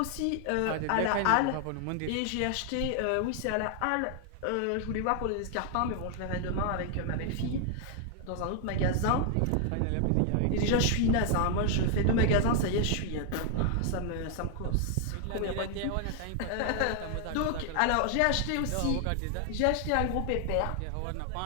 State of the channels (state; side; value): different; both; correlation 0.00